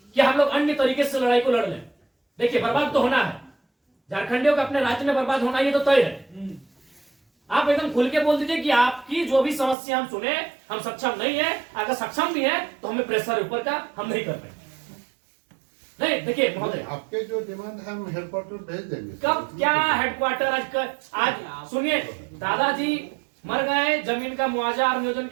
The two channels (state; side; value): drops out; left; at 9.8 s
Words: कि हम लोग अन्य तरीके से लड़ाई को लड़ लें। देखिए, बर्बाद तो होना है, झारखंडियों का अपने राज्य में बर्बाद होना ये तो तय है। आप एकदम खुल के बोल दीजिए कि आपकी जो भी समस्या हम सुने, हम सक्षम नहीं है। अगर सक्षम भी है तो हमें प्रेशर ऊपर का हम नहीं कर पाएंगे। नहीं, देखिए महोदय, आपके जो डिमांड है हम हेडक्वार्टर भेज देंगे। कब क्या हेडक्वार्टर? आज सुनिए, दादाजी मर गए, जमीन का मुआवजा और नियोजन